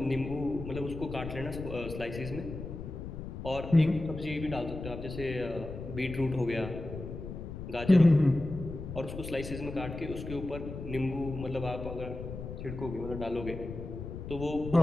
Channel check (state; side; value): noise; left; rumble, 8 dB below the sound